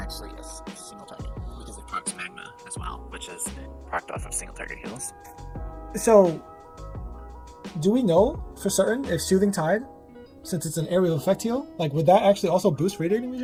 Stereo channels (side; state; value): both; identical; correlation 1.00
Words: a single target because it procs Magma as well, which is procced off of single target heals. So, do we know for certain if Soothing Tide, since it's an area of effect heal, like would that actually also boost Radiating